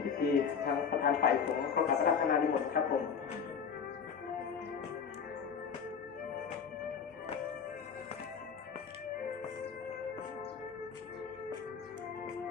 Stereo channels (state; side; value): quieter; right; 6.6 dB